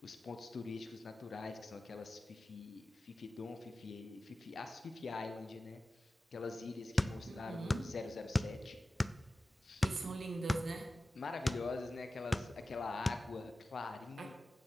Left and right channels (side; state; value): both; normal; correlation 0.95